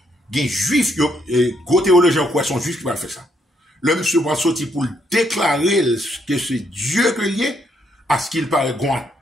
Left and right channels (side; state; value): both; normal; correlation 0.74